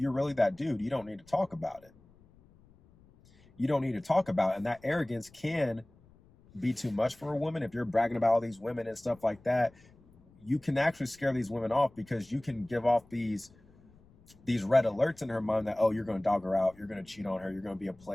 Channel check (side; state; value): left; noise; rumble, 28 dB below the sound